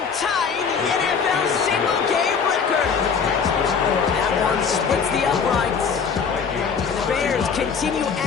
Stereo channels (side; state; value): right; quieter; 6.1 dB